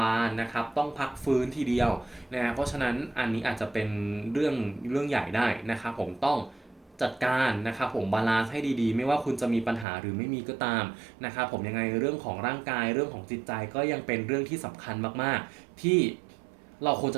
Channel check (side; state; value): left; drops out; at 9.9 s